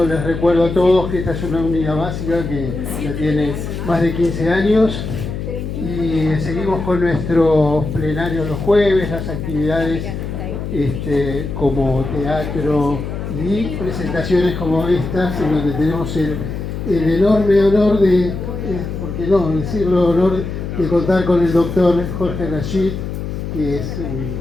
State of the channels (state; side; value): noise; left; hum, 6 dB below the sound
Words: les recuerdo a todos que esta es una unidad básica que ya tiene más de 15 años y seguimos con nuestros plenarios los jueves, las actividades como teatro y presentaciones como estas, en donde tenemos el enorme honor de, ¿por qué no decirlo, honor de contar con el doctor Jorge Rashid, que es